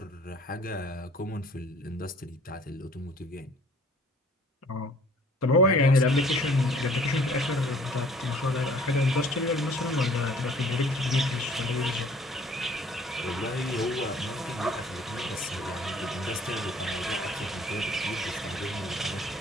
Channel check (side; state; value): both; normal; correlation 0.54